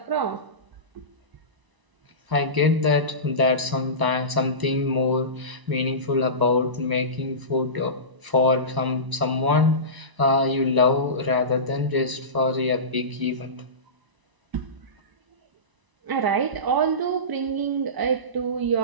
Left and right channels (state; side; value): late; left; 1.0 ms